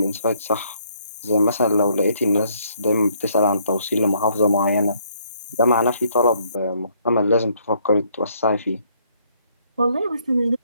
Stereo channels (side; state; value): both; inverted; correlation -0.68